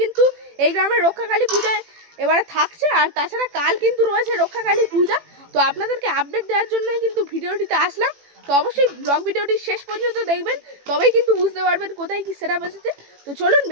কিন্তু এই গ্রামের রক্ষাকালী পূজায় এবারে থাকছে। আর তাছাড়া কাল কিন্তু রয়েছে রক্ষাকালী পূজা। তো আপনাদেরকে আপডেট দেওয়ার জন্যই কিন্তু ভিডিওটিতে আসলাম। তো অবশ্যই ব্লগ ভিডিওটি শেষ পর্যন্ত দেখবেন, তবেই কিন্তু বুঝতে পারবেন কোথায় কি সেটআপ এসেছে। তো চলুন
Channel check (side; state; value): left; late; 18 ms